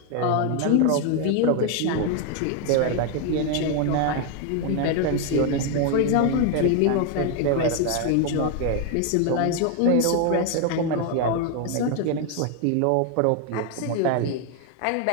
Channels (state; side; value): different; both; correlation 0.01